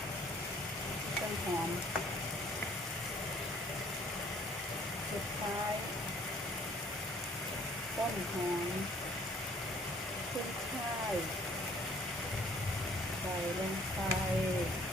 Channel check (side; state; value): both; normal; correlation 0.58